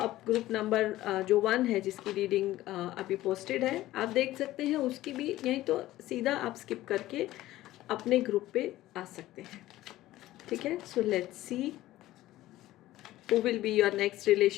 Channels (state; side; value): quieter; right; 15.7 dB